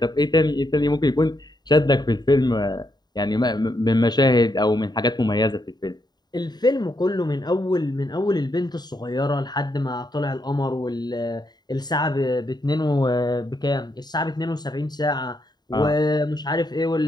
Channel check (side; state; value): right; late; 0.20 ms